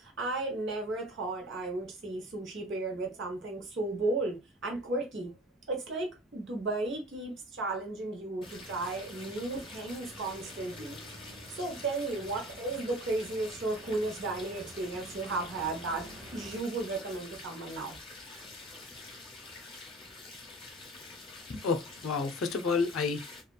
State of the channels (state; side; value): normal; both; correlation 0.42